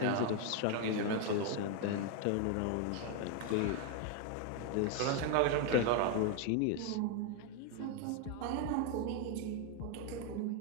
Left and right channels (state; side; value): different; both; correlation 0.01